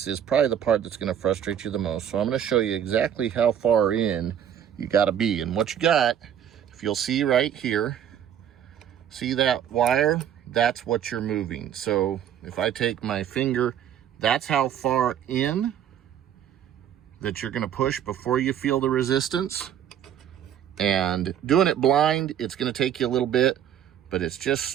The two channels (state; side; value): quieter; left; 9.7 dB